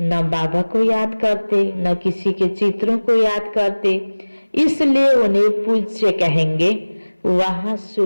न बाबा को याद करते न किसी के चित्रों को याद करते, इसलिए उन्हें पूज्य कहेंगे। वहां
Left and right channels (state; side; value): inverted; both; correlation -1.00